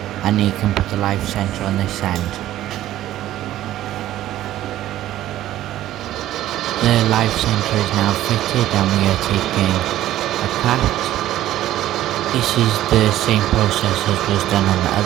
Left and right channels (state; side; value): quieter; left; 13.7 dB